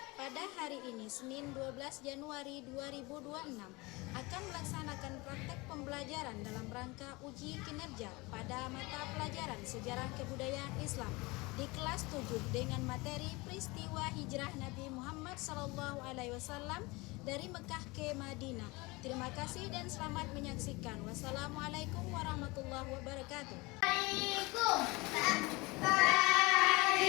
Pada hari ini Senin 12 Januari 2026 akan melaksanakan praktek pembelajaran dalam rangka uji kinerja pada mata pelajaran Sejarah Kebudayaan Islam di kelas 7 dengan materi peristiwa hijrah Nabi Muhammad SAW dari Mekah ke Madinah. Terima kasih dan selamat menyaksikan. Wassalamualaikum warahmatullahi wabarakatuh.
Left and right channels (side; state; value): right; quieter; 24.1 dB